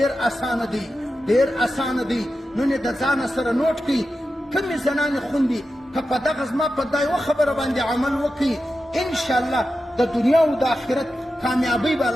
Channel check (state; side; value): normal; both; correlation 0.91